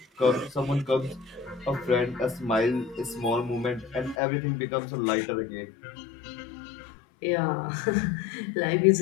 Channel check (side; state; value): right; drops out; at 4.2 s